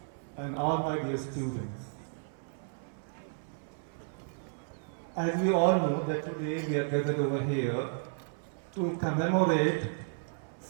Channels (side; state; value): left; silent; 56 dB below the other